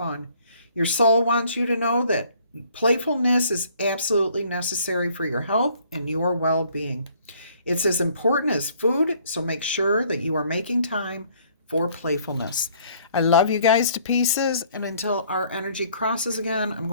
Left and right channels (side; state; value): both; inverted; correlation -0.61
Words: Your soul wants you to know that playfulness is absolutely necessary for your health and your well-being. It's as important as food, so make sure that you are making time for playfulness. I love you guys to pieces, and until our energy crosses again, I'm